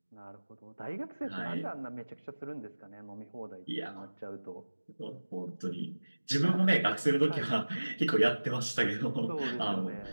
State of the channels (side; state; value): both; inverted; correlation -1.00